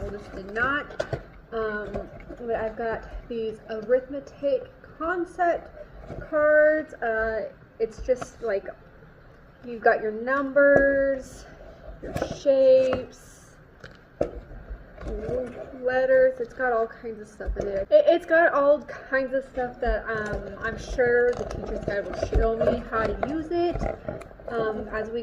oldest did not. But I've got these arithmetic concept cards. It's just like you've got your numbers, your shapes, letters. It's got all kinds of stuff in it. It's got all kinds of stuff that I'm sure the teacher's guide will show me how to use it as we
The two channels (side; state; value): both; identical; correlation 1.00